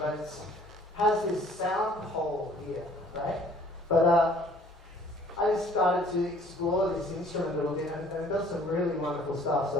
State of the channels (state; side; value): normal; both; correlation 0.56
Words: it has this sound hole here, right? But I just started to explore this instrument a little bit, and it does some really wonderful stuff. So